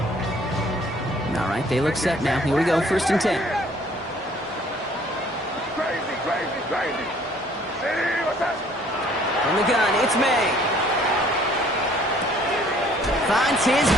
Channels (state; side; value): normal; both; correlation 0.58